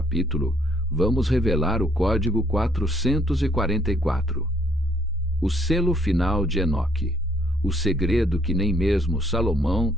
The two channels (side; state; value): both; normal; correlation 0.67